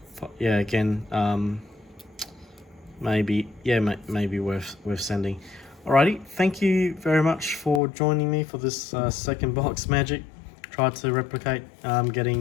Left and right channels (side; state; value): right; drops out; at 7.8 s